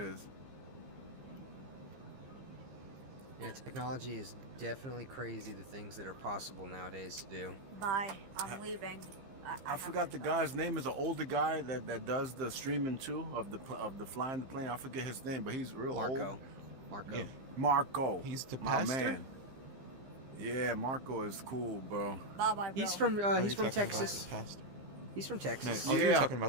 is. Yeah, technology is definitely crazy. The things that are possible nowadays to do. Bye. I'm leaving. I forgot the guy's name. Is an older guy that does the streaming too of the flying the plane. I forget his name, but he's real Marco. old. Marco. Yeah. Marco. He's the my pastor? man. Yeah, Marco is cool, bro. Bye bye. He's bro. from Oh, he's you're from talking about Texas. the pastor. He's from No, Texas. oh, you're Yeah. talking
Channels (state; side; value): late; left; 15 ms